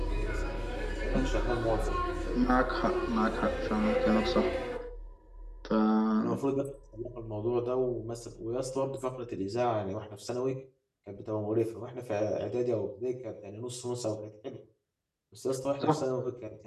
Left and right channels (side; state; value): both; identical; correlation 1.00